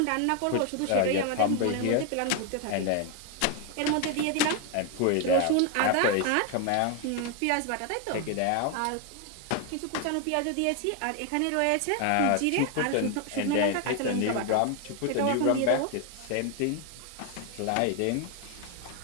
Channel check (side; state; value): both; different; correlation 0.01